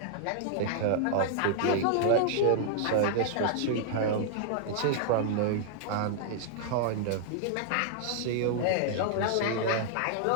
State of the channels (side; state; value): both; different; correlation -0.01